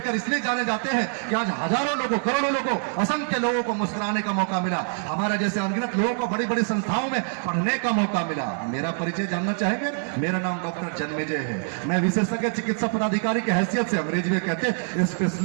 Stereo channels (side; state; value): left; silent; 62 dB below the other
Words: इसलिए जाने जाते हैं कि आज हजारों लोगों, करोड़ों लोगों, असंख्य लोगों को मुस्कुराने का मौका मिला। हमारे जैसे अनगिनत लोगों को बड़ी बड़ी संस्थाओं में पढ़ने का मौका मिला। मेरा परिचय जानना चाहेंगे? मेरा नाम डॉक्टर जन्मेजय है। मैं विशेषज्ञ चिकित्सा पदाधिकारी की हैसियत से, अंग्रेजी में कहते हैं